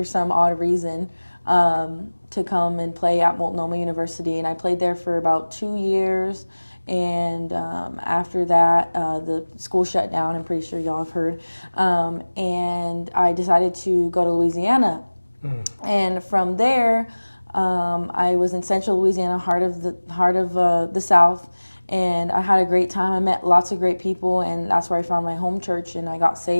some odd reason to come and play at Multnomah University, and I played there for about 2 years. And after that, the school shut down. I'm pretty sure y'all have heard. And I decided to go to Louisiana. And from there, I was in Central Louisiana, heart of the South. And I had a great time. I met lots of great people, and that's where I found my home church, and I got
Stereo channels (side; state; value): both; inverted; correlation -1.00